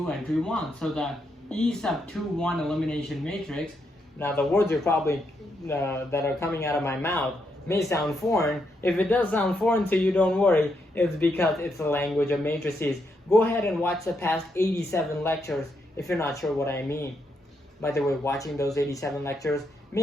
entry 1. So the E sub 2, 1 elimination matrix. Now the words are probably that are coming out of my mouth may sound foreign. If it does sound foreign to you, don't worry. It's because it's the language of matrices. Go ahead and watch the past 87 lectures if you're not sure what I mean. By the way, watching those 87 lectures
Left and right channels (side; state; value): both; normal; correlation 0.79